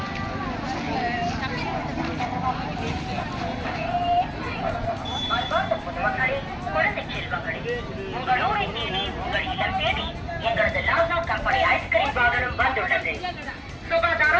குழந்தை செல்வங்களே, உங்கள் ஊரை தேடி, உங்கள் இல்லம் தேடி எங்களது லாசா கம்பெனி ஐஸ்கிரீம் வாகனம் வந்துள்ளது.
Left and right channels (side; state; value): both; identical; correlation 1.00